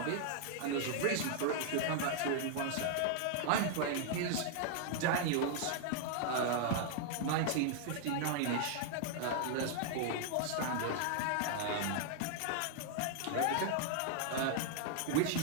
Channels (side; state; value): both; different; correlation 0.00